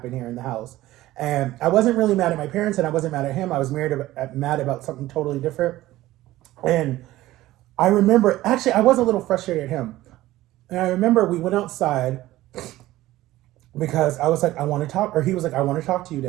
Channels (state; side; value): quieter; left; 16.2 dB